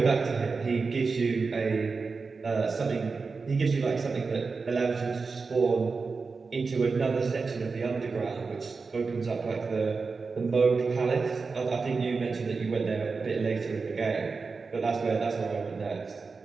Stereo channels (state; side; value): quieter; left; 4.5 dB